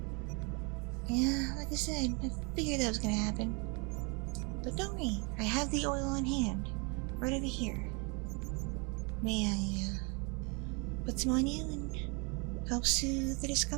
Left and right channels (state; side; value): quieter; left; 32.2 dB